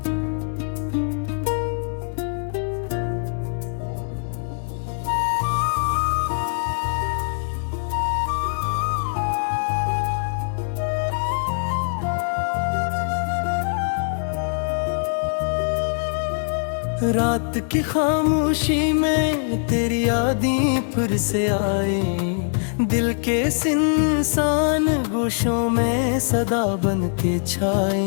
रात की खामोशी में तेरी यादें फिर से आए, दिल के सिंसान गोशों में सदा बन के छाए।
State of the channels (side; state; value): right; silent; 64 dB below the other